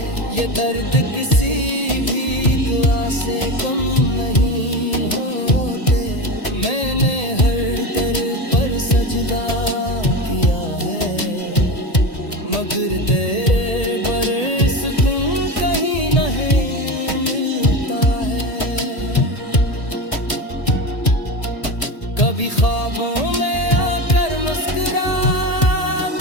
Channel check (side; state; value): right; late; 1.8 ms